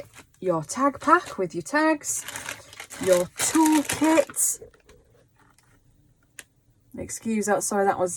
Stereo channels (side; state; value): both; identical; correlation 1.00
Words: Your tag pack with your tags. Your toolkit. Excuse that, sorry, that